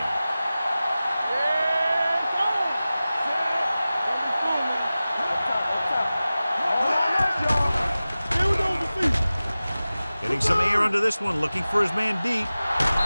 Getting some air under this one, looking for his man deep.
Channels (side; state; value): both; inverted; correlation -0.96